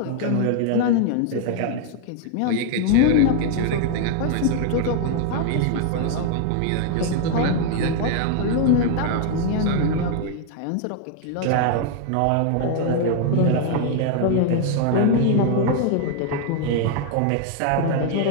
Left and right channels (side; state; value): both; different; correlation 0.00